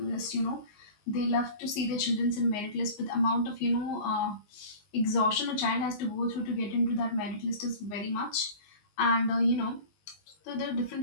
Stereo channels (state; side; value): late; right; 19 ms